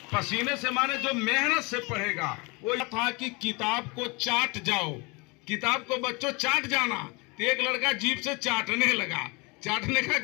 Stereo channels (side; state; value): right; quieter; 27.9 dB